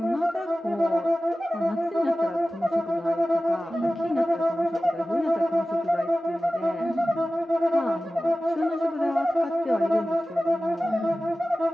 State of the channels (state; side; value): normal; both; correlation 0.96